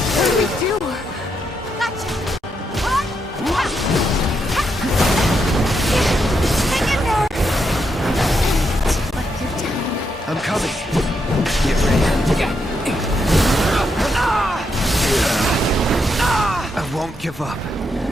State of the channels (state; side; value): normal; both; correlation 0.80